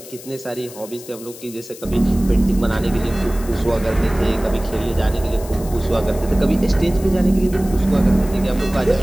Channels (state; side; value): noise; left; hiss, 17 dB below the sound